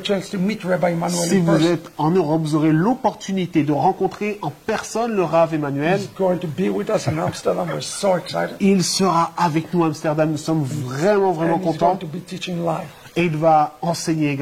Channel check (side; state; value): both; identical; correlation 1.00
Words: chance to meet Rabbi Emmanuel Si in vous person. êtes en Europe, vous aurez l'opportunité de rencontrer en personne le Rav Emmanuel. He's going to be with us in Amsterdam. We're so excited. Il sera avec nous à Amsterdam. Nous sommes vraiment, vraiment And he's contents. going to be teaching live. Et il va enseigner